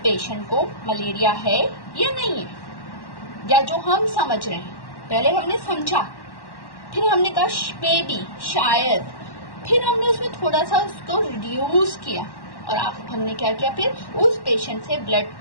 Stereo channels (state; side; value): late; right; 1.1 ms